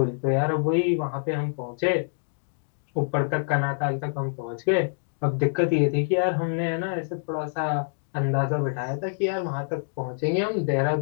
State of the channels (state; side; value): silent; right; digital silence